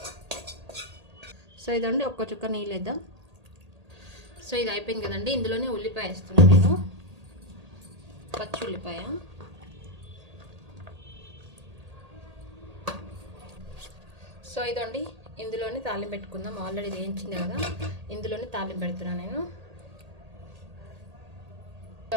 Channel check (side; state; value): left; late; 1.8 ms